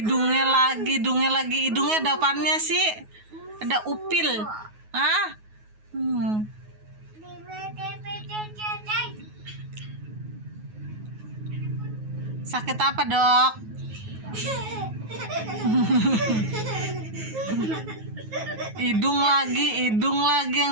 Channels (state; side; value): late; left; 9.4 ms